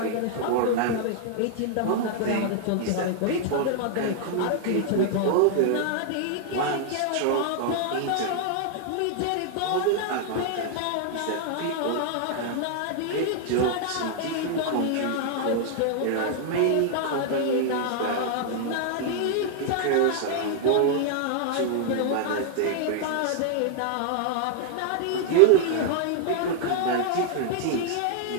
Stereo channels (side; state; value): both; different; correlation 0.00